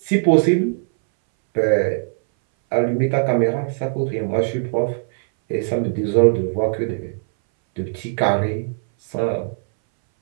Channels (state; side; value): silent; left; 63 dB below the other